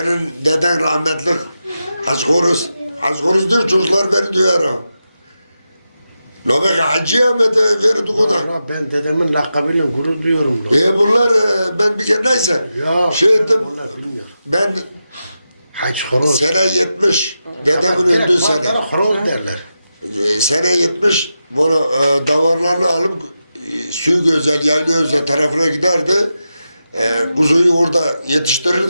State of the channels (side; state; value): both; inverted; correlation -0.90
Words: deden rahmetlik. Haşkoruz diyor çocuklar beni duyar ha. Nobek Hacı'ya mı verdik o da? Ben dedemin lakabıyla gurur duyuyorum. Bunlar ben bir kere neyse. Ya. Şey ettim, Onlar bilmiyor. ben Haç horoz. sene 70, dedemin öldüğü sene. Horoz derler. Sene 70, bunu davarlarını alıp suyu güzel, yaylı özel tarafına giderdi. Kuzuyu orada